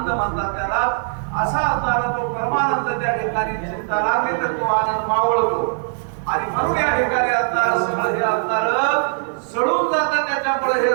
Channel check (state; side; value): silent; left; 57 dB below the other